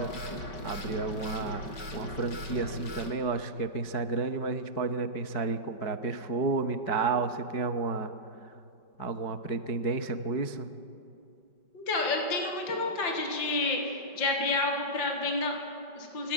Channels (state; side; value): late; right; 5.2 ms